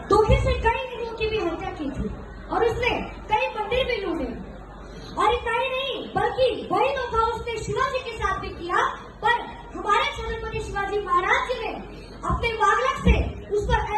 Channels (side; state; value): both; identical; correlation 1.00